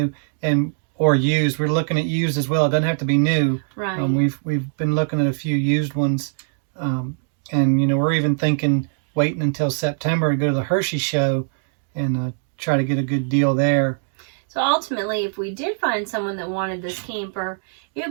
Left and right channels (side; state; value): left; silent; digital silence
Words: And or used. We're looking at used as well. It doesn't have to be new. Right. We've been looking at a few used ones, and you know, we're even thinking waiting until September to go to the Hershey show and try to get a good deal there. So ultimately, if we did find someone that wanted this camper, it